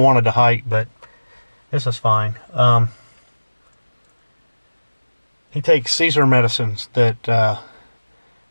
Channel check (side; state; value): both; inverted; correlation -1.00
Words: to hike, but this is fine. He takes Caesar medicines that